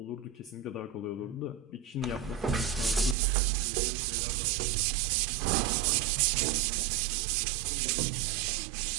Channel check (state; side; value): drops out; left; at 3.2 s